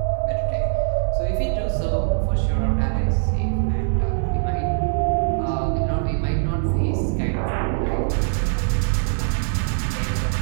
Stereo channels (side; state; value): left; silent; 64 dB below the other